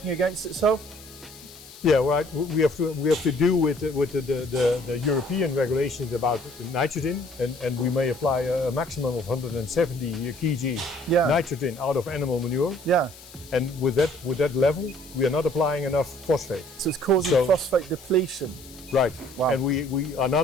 against itself? Yeah, right. We have to do with the European regulations about nitrogen, and we may apply a maximum of 170 kg nitrogen out of animal manure. Yeah. And with that level, we are not applying enough phosphate. So it's causing phosphate depletion. Right. Wow. And we are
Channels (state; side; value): noise; left; hiss, 20 dB below the sound